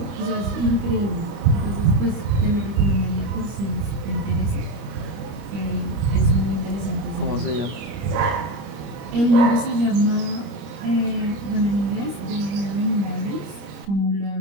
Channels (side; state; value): left; late; 25 ms